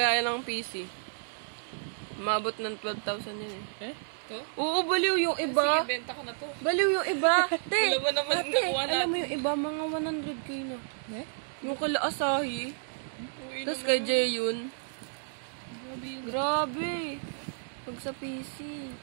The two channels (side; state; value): left; silent; digital silence